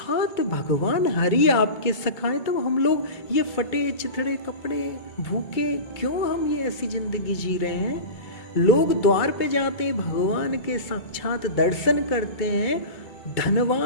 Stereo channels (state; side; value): late; right; 2.2 ms